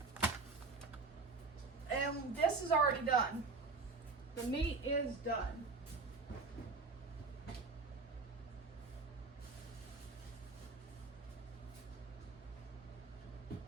And this is already done. The meat is done.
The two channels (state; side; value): quieter; left; 4.0 dB